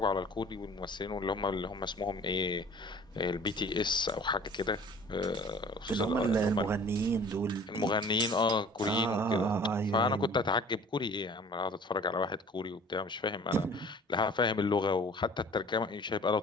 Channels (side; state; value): both; normal; correlation 0.47